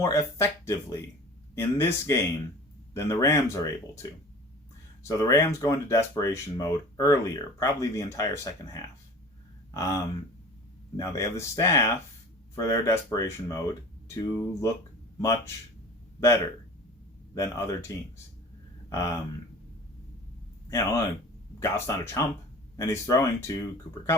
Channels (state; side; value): normal; both; correlation 0.41